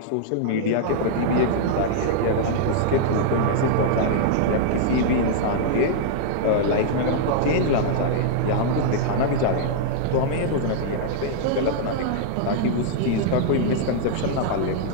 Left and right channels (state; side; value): different; both; correlation -0.01